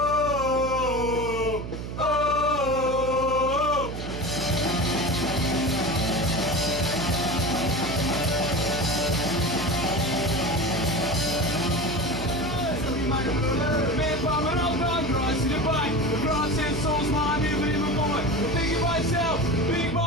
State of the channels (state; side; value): noise; right; hum, 7 dB below the sound